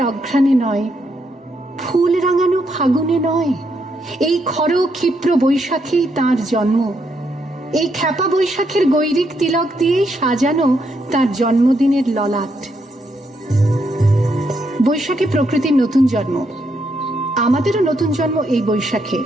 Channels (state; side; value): normal; both; correlation 0.78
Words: অঘ্রাণে নয়, ফুল রাঙানো ফাগুনে নয়, এই খর ক্ষিপ্র বৈশাখেই তার জন্ম। এই খ্যাপা বৈশাখের গৈরিক তিলক দিয়েই সাজানো তার জন্মদিনের ললাট। বৈশাখে প্রকৃতির নতুন জন্ম, আমাদেরও নতুন জন্ম এই বৈশাখে,